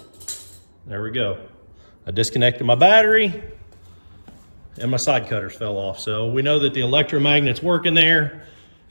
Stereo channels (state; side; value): inverted; both; correlation -1.00